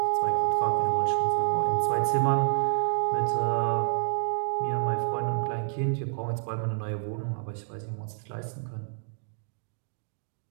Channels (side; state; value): left; silent; digital silence